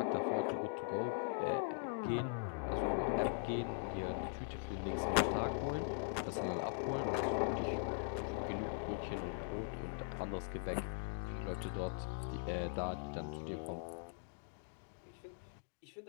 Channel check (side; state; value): right; silent; digital silence